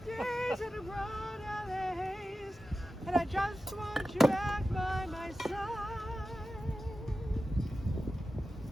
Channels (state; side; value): normal; both; correlation 0.93